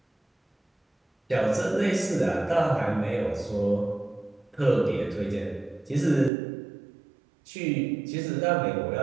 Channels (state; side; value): drops out; left; at 6.3 s